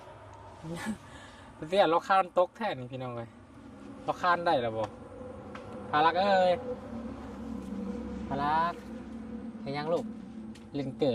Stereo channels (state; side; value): identical; both; correlation 1.00